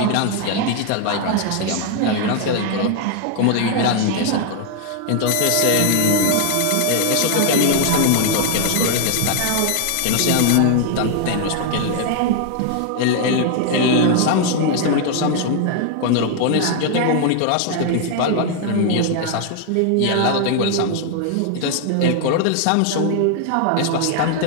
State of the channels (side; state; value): both; different; correlation 0.00